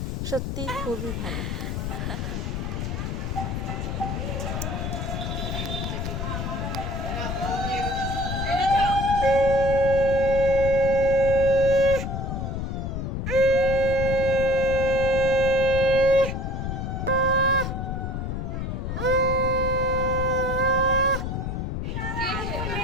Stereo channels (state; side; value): noise; left; rumble, 3 dB below the sound